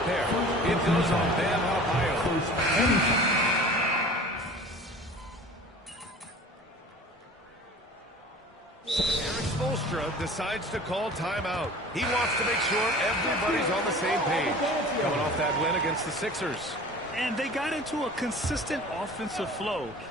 pair. It goes on Bam Adebayo. Decides to call timeout. He wants to make sure everybody's on the same page. Coming off that win against the Sixers. And they got into a consistent offensive flow,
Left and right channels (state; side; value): normal; both; correlation 0.42